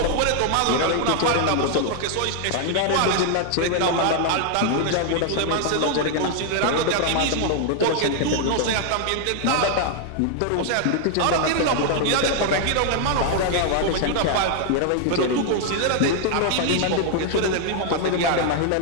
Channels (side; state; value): both; different; correlation 0.00